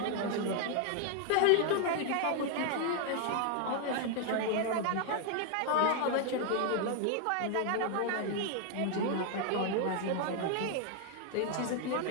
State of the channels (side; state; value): both; different; correlation 0.00